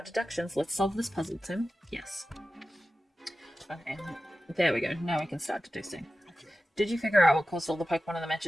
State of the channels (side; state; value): both; normal; correlation 0.94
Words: deductions. Let's solve this puzzle, Tim. Yes. Okay, there we go. Now we can start deducing. Okay. Did you figure out what caused all the Pokemon in the